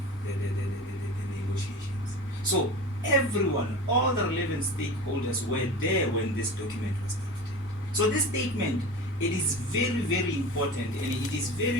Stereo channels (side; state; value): both; normal; correlation 0.33